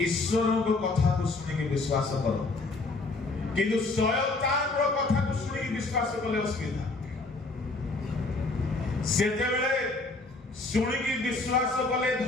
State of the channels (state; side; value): quieter; right; 3.4 dB